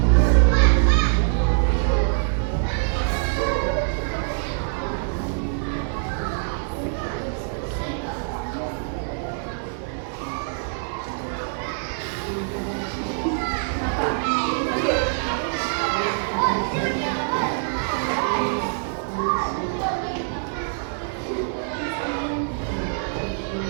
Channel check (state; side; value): silent; left; digital silence